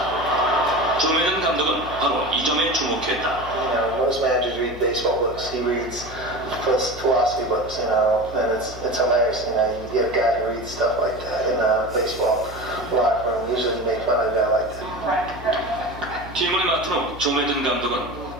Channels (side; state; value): left; noise; hum, 14 dB below the sound